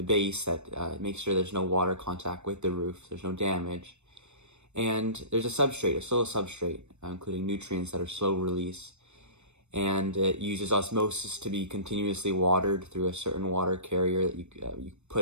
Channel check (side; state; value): left; late; 0.82 ms